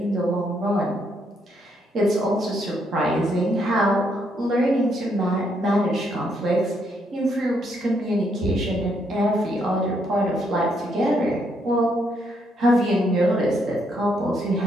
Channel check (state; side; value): normal; both; correlation 0.74